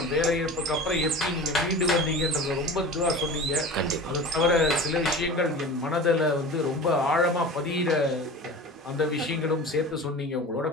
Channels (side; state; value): both; normal; correlation 0.35